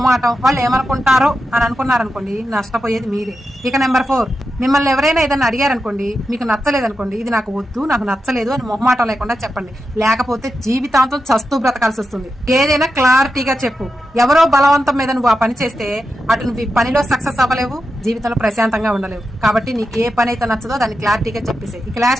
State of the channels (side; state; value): both; normal; correlation 0.89